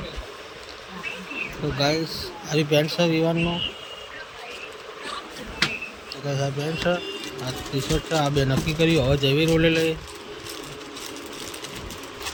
તો ગાઈસ હારી પેન્ટ છે વિવાનનો પેન્ટ છે આ ટી શર્ટ છે આ બે નક્કી કર્યું હવે જેવી રોલે લઈએ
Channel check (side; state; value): both; identical; correlation 1.00